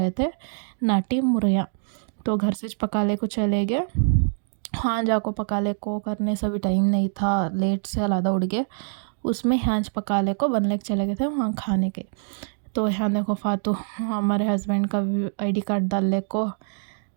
थे नाटी मुरैया। तो घर से पका ले को चले गए, हाँ जाको पका ले को करने से भी टाइम नहीं था, लेट से अलादा उड़ गए, उसमें हाँच पका ले को बनने के चले गए थे वहाँ खाने के। तो यहाँ देखो फातू हमारे हस्बैंड का ID कार्ड डाल ले को,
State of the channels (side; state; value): left; silent; digital silence